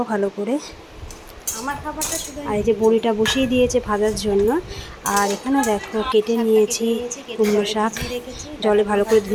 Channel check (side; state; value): both; identical; correlation 1.00